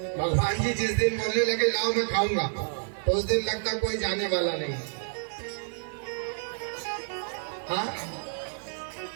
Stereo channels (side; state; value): left; silent; digital silence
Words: भगवान जी जिस दिन बोलने लगे लाओ मैं खाऊंगा, तो उस दिन लगता कोई जाने वाला नहीं। हाँ,